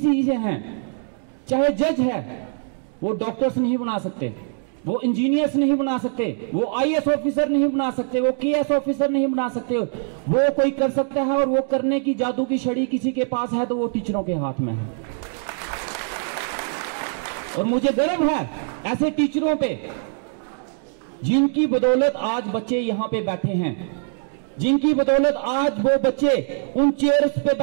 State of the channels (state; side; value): silent; left; 64 dB below the other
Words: हैं, चाहे जज है, वो डॉक्टर्स नहीं बना सकते, वो इंजीनियर्स नहीं बना सकते, वो आईएएस ऑफिसर नहीं बना सकते, वो केएस ऑफिसर नहीं बना सकते। वो कोई कर सकता है और वो करने की जादू की छड़ी किसी के पास है तो वो टीचरों के हाथ में है। और मुझे गर्व है ऐसे टीचरों पे जिनकी बदौलत आज बच्चे यहां पे बैठे हैं, जिनकी बदौलत आज वो बच्चे उन चेयर्स पे